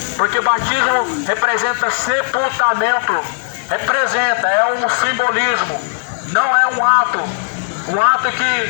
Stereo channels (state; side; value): silent; right; 69 dB below the other